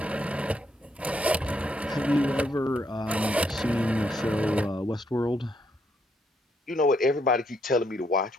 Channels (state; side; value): normal; both; correlation 0.75